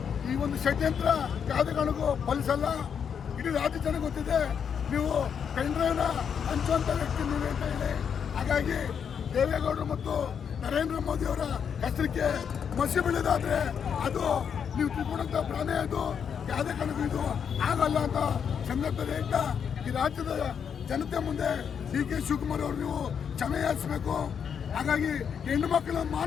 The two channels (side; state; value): right; quieter; 7.4 dB